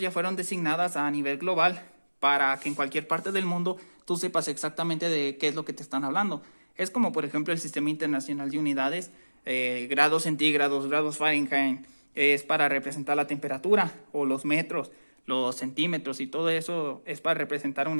ya fueron designadas a nivel global para que en cualquier parte del mundo tú sepas exactamente de qué es lo que te están hablando. Es como, por ejemplo, el Sistema Internacional de Unidades, grados centígrados, grados Fahrenheit, es para representar la temperatura, o los metros, los centímetros, y todo eso es para representar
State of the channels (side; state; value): both; inverted; correlation -1.00